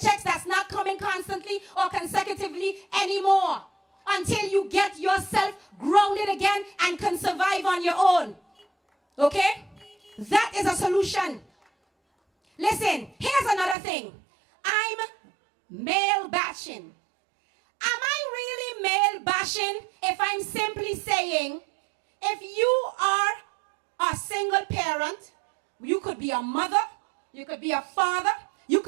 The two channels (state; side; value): drops out; left; at 13.8 s